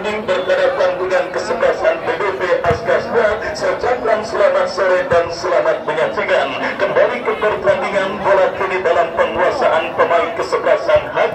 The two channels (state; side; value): identical; both; correlation 1.00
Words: berhadapan dengan kesebelasan BBB Askasda. Saya ucapkan selamat sore dan selamat menyaksikan kembali ke pertandingan bola kini dalam penguasaan pemain kesebelasan